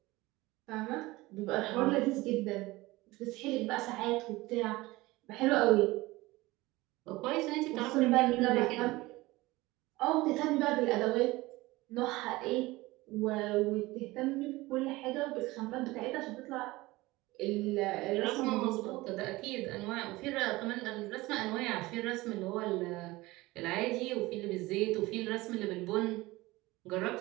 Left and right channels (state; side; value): quieter; left; 20.1 dB